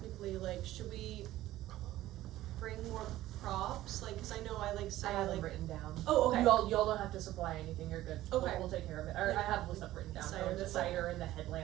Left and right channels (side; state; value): left; quieter; 15.1 dB